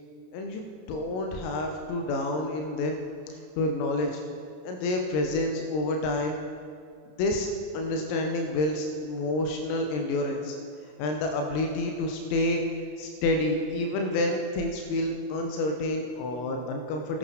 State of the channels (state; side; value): late; right; 33 ms